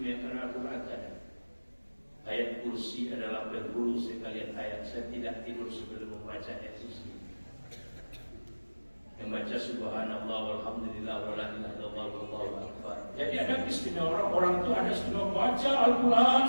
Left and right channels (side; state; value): both; inverted; correlation -1.00